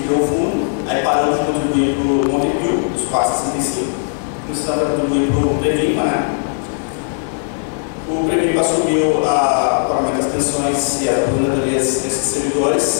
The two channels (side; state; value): right; silent; digital silence